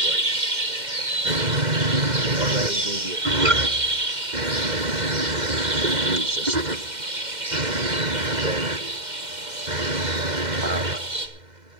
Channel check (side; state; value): left; late; 2.1 ms